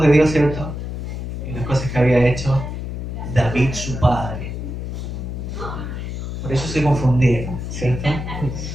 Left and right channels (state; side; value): noise; left; hum, 6 dB below the sound